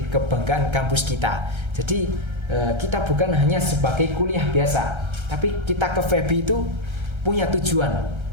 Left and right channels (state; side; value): late; left; 1.3 ms